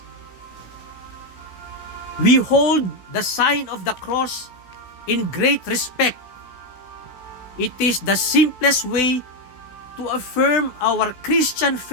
We hold the sign of the cross in great respect. It is the simplest way to affirm our Christian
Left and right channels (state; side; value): late; right; 16 ms